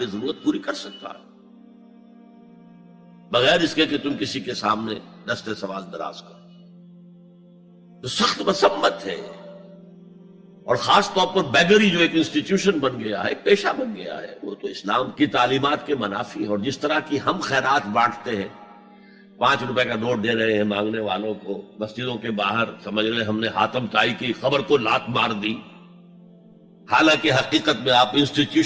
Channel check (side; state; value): both; identical; correlation 1.00